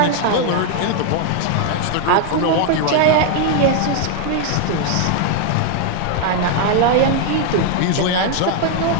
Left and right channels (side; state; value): both; different; correlation 0.00